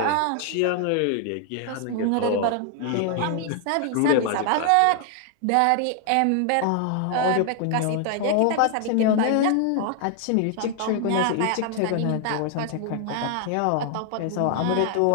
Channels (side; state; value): both; different; correlation 0.00